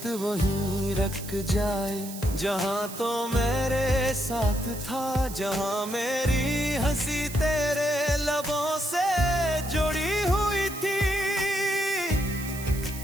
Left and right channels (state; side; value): noise; right; hiss, 12 dB below the sound